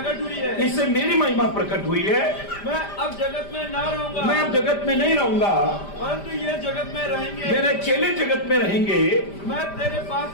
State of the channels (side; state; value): right; late; 5.0 ms